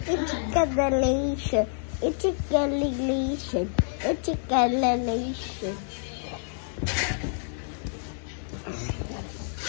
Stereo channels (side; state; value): right; silent; 60 dB below the other